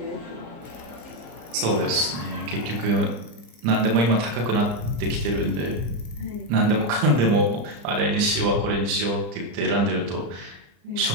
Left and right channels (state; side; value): late; left; 34 ms